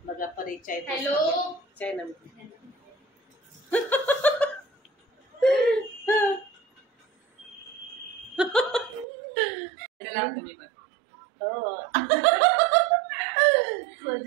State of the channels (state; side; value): drops out; left; at 9.1 s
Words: बघा. परी चाय. हॅलो. चाय ना.